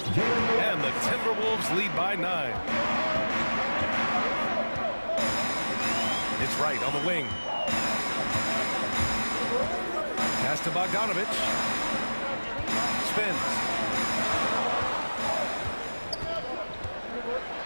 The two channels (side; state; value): both; inverted; correlation -1.00